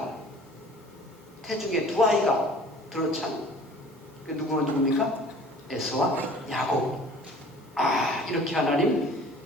태중에 두 아이가 들어찬, 그 누굽니까? 에서와 야곱. 이렇게 하나님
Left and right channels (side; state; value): both; normal; correlation 0.48